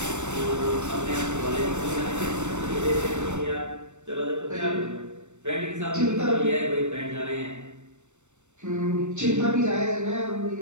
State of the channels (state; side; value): late; left; 0.84 ms